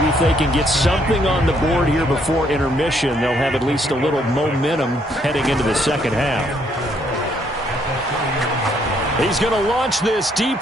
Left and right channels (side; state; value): both; normal; correlation 0.70